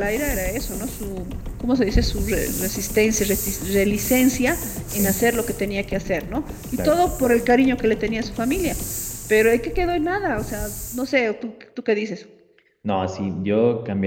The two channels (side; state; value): both; identical; correlation 1.00